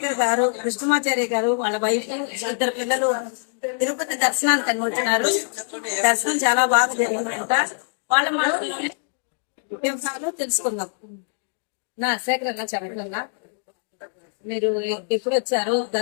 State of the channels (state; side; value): silent; right; digital silence